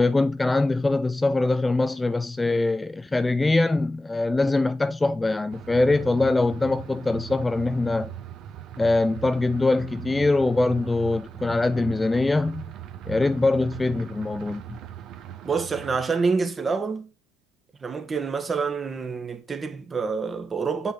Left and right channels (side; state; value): both; normal; correlation 0.93